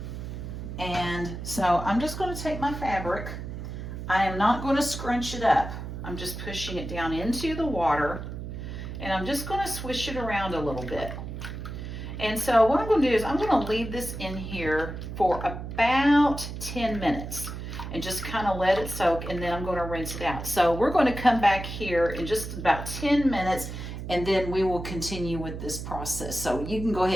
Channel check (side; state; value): right; noise; hum, 8 dB below the sound